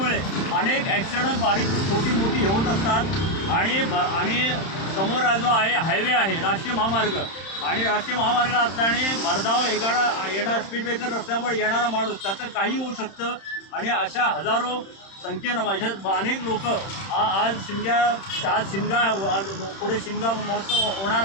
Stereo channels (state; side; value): late; right; 31 ms